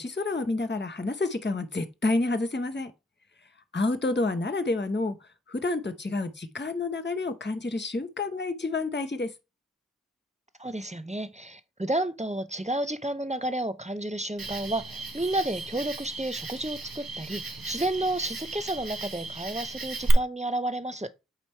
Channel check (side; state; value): both; normal; correlation 0.69